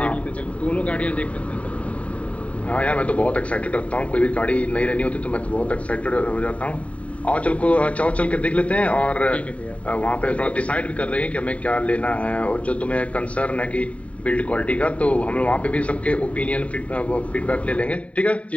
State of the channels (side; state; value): right; late; 0.066 ms